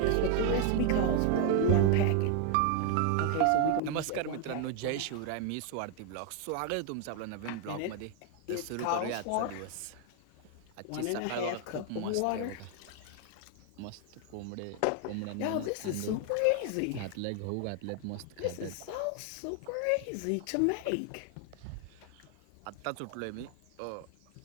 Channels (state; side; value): different; both; correlation 0.00